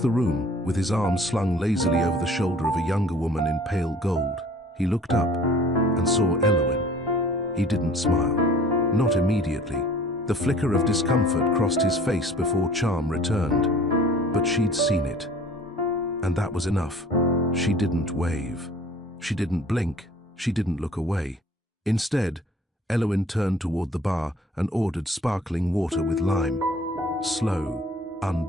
room, with his arms slung lazily over the shoulder of a younger woman in pale gold, he looked up and saw Eloise. He didn't smile. Not immediately. The flicker of discomfort crossed his face before charm returned. But she'd seen it. And that was enough. She didn't wave. She didn't blink. She didn't look away. Instead, Eloise turned toward the bar and ordered sparkling water with lime. Slow,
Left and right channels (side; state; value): both; normal; correlation 0.50